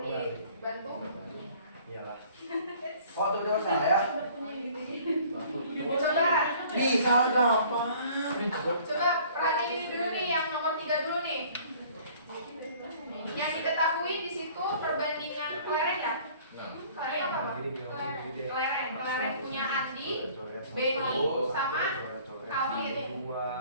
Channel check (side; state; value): both; inverted; correlation -0.53